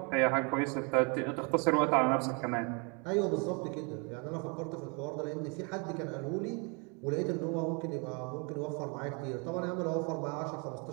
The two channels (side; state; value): left; quieter; 33.3 dB